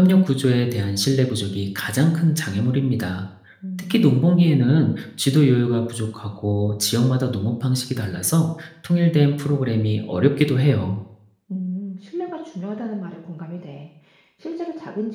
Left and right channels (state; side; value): identical; both; correlation 1.00